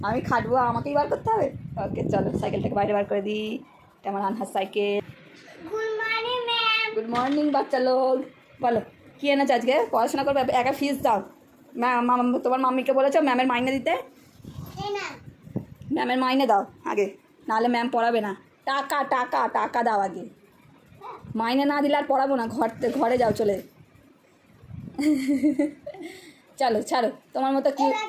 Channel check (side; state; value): both; identical; correlation 1.00